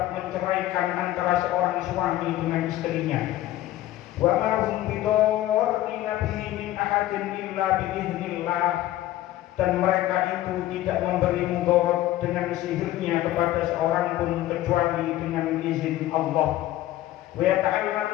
menceraikan antara seorang suami dengan istrinya wa ma hum bidarrina bihi min ahadin illa biiznillah dan mereka itu tidak memberi mudarat dengan sihirnya kepada seorang pun kecuali dengan izin Allah wa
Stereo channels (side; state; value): right; quieter; 14.6 dB